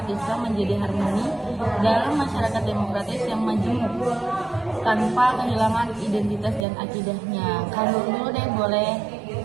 Islam menjadi harmoni dalam masyarakat demokratis yang majemuk tanpa kehilangan identitas dan akidahnya. Kalau dulu deh boleh.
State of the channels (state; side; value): drops out; left; at 6.7 s